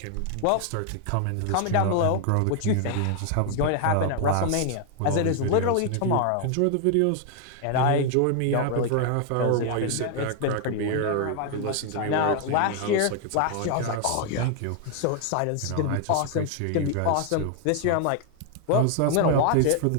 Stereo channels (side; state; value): both; different; correlation 0.00